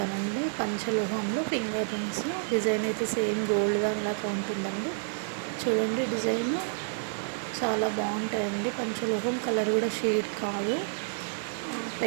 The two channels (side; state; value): left; silent; 58 dB below the other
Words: పంచలోహంలో ఫింగర్ రింగ్స్ డిజైన్ అయితే సేమ్ గోల్డ్ దానిలాగా ఉంటుందండి. చూడండి డిజైన్ చాలా బాగుంటాయండి. పంచలోహం కలర్ కూడా షేడ్ కాదు.